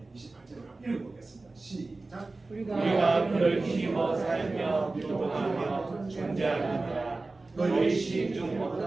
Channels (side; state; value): left; quieter; 3.3 dB